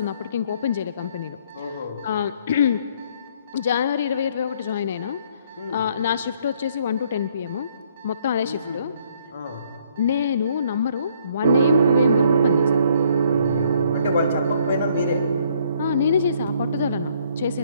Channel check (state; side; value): inverted; both; correlation -0.65